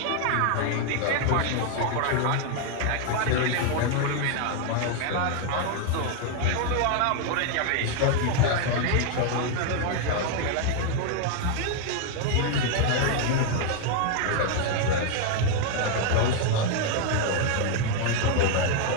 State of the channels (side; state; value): both; different; correlation 0.00